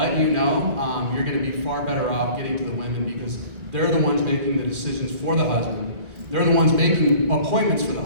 you know, you're going to be far better off getting to the women because they're the ones making the decisions for the husband. They're the ones making appointments for the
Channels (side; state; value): left; late; 2.4 ms